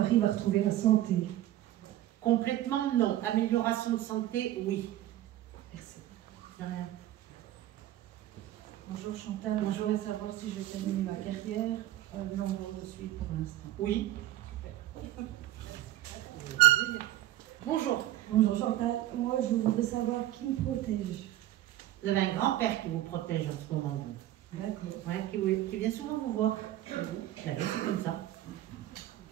va retrouver la santé. Complètement non. Amélioration de santé, oui. Merci. De rien. Bonjour Chantal. Moi, je voudrais savoir si je vais terminer ma carrière. Non, je suis pour l'instant. Oui. Bonjour. Bonjour Chantal. Moi, je voudrais savoir qui me protège. Vous avez un grand-père qui vous protège en ce moment. D'accord. Ouais, qui vient souvent vous voir. C'est comme ça.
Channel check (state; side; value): quieter; left; 13.9 dB